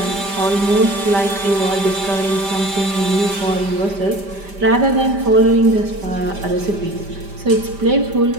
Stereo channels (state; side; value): late; left; 5.1 ms